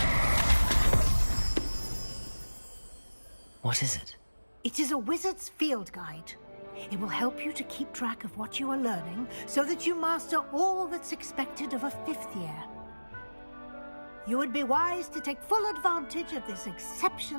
What is it? It is a wizard's field guide. It will help you to keep track of what you are learning so that you master all that's expected of a 5th year. You would be wise to take full advantage of this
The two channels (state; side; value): inverted; both; correlation -1.00